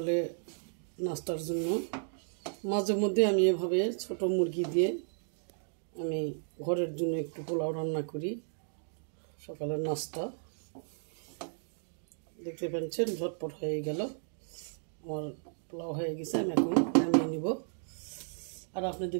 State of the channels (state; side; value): silent; left; digital silence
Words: নাস্তার জন্য। মাঝে মধ্যে আমি এভাবে ছোট মুরগি দিয়ে আমি ঘরের জন্য একটু পোলাও রান্না করি সকালের নাস্তা। দেখতে পাচ্ছেন ঝটপট হয়ে গেল, আমার পোলাও হয়ে গেছে। আমি এখন নামিয়ে নিব। আর আপনাদের